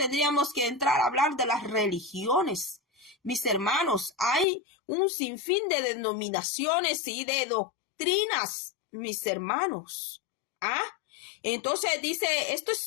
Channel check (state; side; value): drops out; right; at 4.5 s